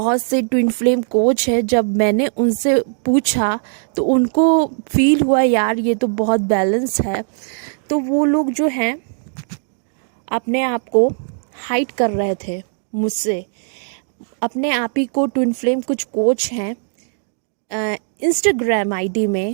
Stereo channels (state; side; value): silent; left; 67 dB below the other